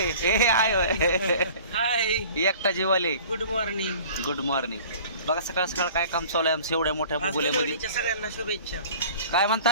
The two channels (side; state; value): both; inverted; correlation -0.45